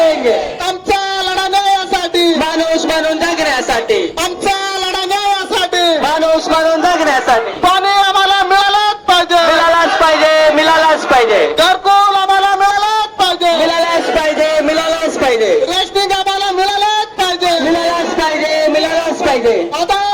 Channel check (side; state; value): both; identical; correlation 1.00